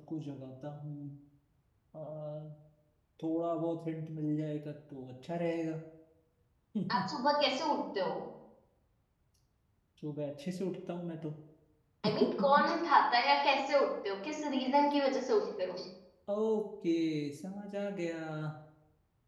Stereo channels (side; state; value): both; identical; correlation 1.00